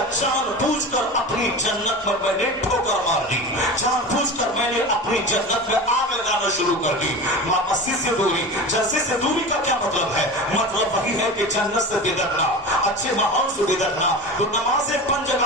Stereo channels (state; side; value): normal; both; correlation 0.30